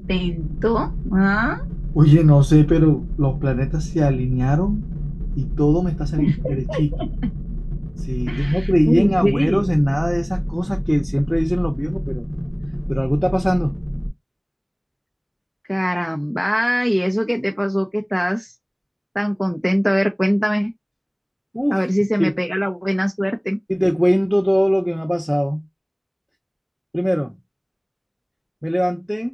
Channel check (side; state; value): both; identical; correlation 1.00